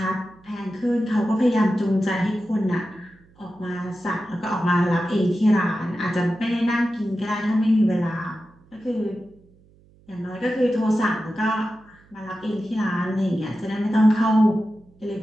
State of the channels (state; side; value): noise; right; hum, 29 dB below the sound